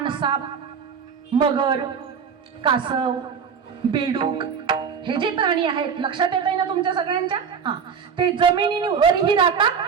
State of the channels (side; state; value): left; quieter; 6.6 dB